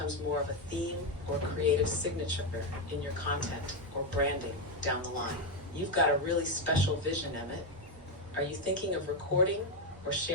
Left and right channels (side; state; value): both; normal; correlation 0.06